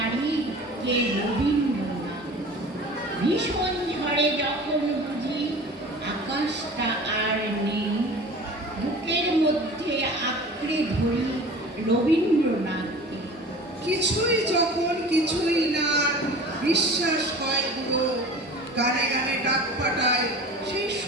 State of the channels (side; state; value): both; normal; correlation 0.39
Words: কে রবীন্দ্রনাথ। ভীষণ ঝড়ে যখন বুঝি আকাশটা আর নেই, বুকের মধ্যে আঁকড়ে ধরি রবীন্দ্রনাথকে। কিছুই যখন কিছুই না, বিশ্বাস হয় পুরো, গানে গানে ডাক পাঠায় সেই